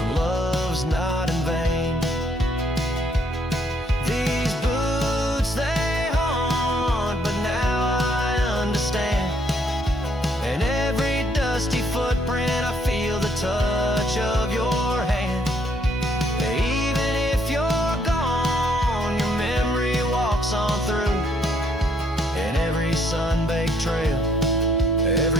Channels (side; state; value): both; normal; correlation 0.69